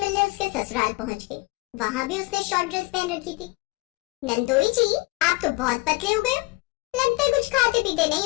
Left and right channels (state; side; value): quieter; right; 23.0 dB